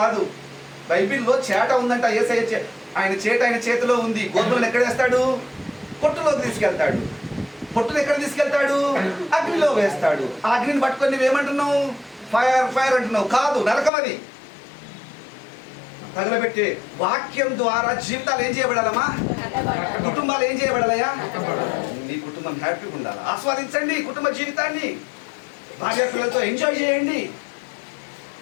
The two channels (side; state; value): right; drops out; at 13.9 s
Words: బైబిల్లో చేట ఉందంట. యేసయ్య ఆయన చేట ఆయన చేతిలో ఉంది. గోధుమలను ఎక్కడ వేస్తాడు? పొట్టులోకి తీసుకెళ్తాడు. పొట్టును ఎక్కడ తీసుకెళ్తాడు? అగ్నిలో వేస్తాడు. ఆ అగ్నిని పట్టుకొని నువ్వేమంటున్నావు? ఫైర్ ఫైర్ అంటున్నావు. కాదు, నరకం అది. తగలబెట్టే వాక్యం ద్వారా జీవితాలు ఏం చేయబడాలమ్మా? కుటుంబాలు ఏం చేయబడాలయా? నీ కుటుంబం హ్యాపీగా ఉండాలి. ఆస్వాదించండి కుటుంబ జీవితాన్ని. భార్య పిల్లలతో ఎంజాయ్ చేయండి.